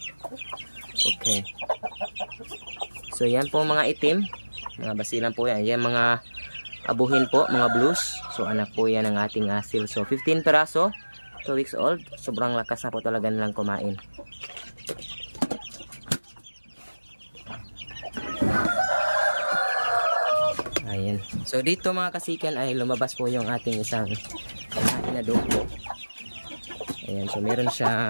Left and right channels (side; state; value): both; inverted; correlation -1.00